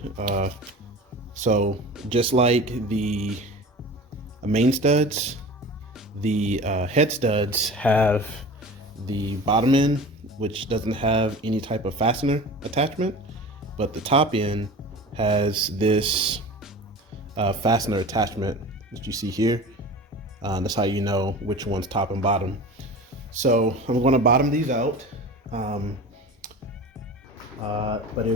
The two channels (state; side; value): normal; both; correlation 0.36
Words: so just like the main studs, the head studs have the bottom end, which doesn't have any type of fastener attachment, but the top end has this fastener attachment that you see here. That's how you know which one's top and bottom. So I'm going to bottom these out, but it